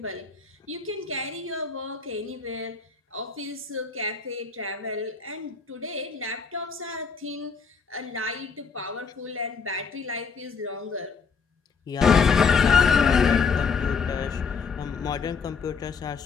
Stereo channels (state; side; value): quieter; right; 5.5 dB